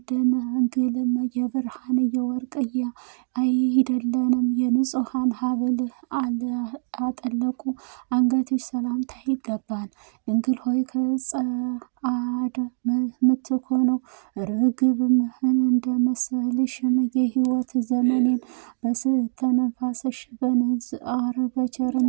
ደናግልም የብርሃን የወርቅ አይደለንም የንጹሐን ሀብል አጠለቁ አንገትሽ ሰላምታ ይገባል። ድንግል ሆይ ከጸአደ ምትኮነው ርግብም እንደመሰልሽም የሕይወት ዘመኔን በስተነፋስሽ በንዝአር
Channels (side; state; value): left; silent; 63 dB below the other